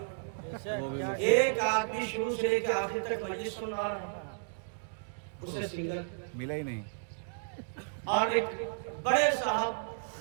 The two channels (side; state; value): left; silent; digital silence